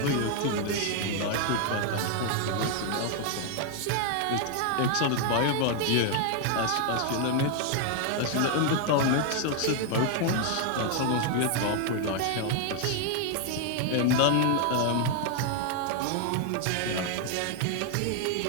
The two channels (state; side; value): different; both; correlation 0.00